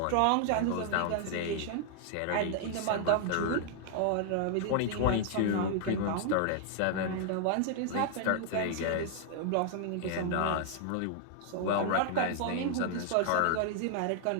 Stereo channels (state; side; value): different; both; correlation -0.01